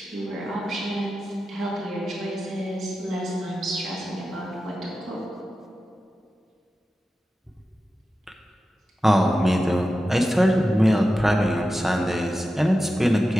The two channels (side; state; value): both; normal; correlation 0.92